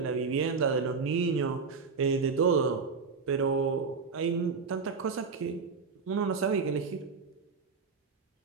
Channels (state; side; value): quieter; left; 5.1 dB